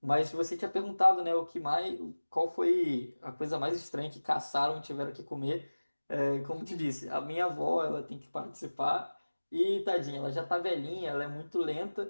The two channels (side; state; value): both; inverted; correlation -1.00